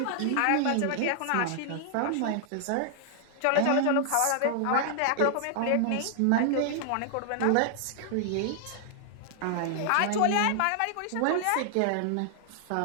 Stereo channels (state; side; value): different; both; correlation 0.00